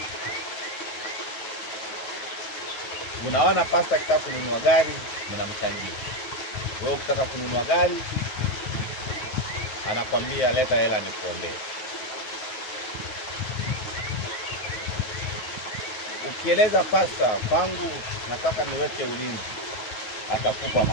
Unaona pasta akitaka kununua gari, mnamchangia. Wewe ukitaka kununua gari, anakwambia leta hela nikuombee. Ukieleza pasta, kwangu nataka niweke ulinzi, atakupa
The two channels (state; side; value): late; right; 9.3 ms